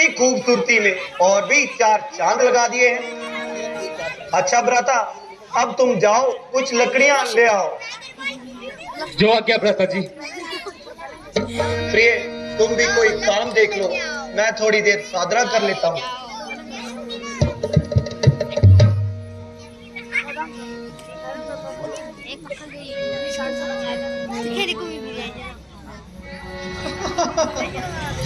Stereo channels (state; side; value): identical; both; correlation 1.00